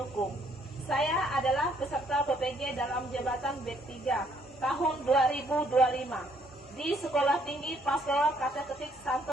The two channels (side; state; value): both; normal; correlation 0.67